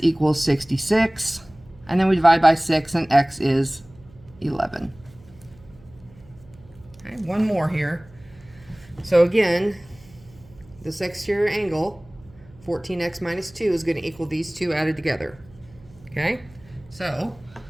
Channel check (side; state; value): right; noise; hum, 25 dB below the sound